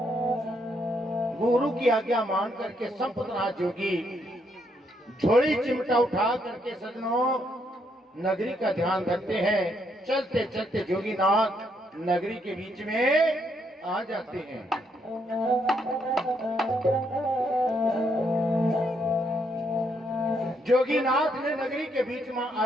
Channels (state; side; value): normal; both; correlation 0.74